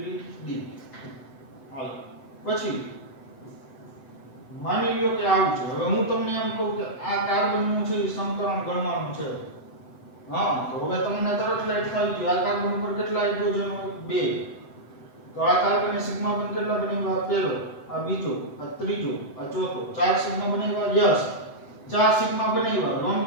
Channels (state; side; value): late; right; 7.9 ms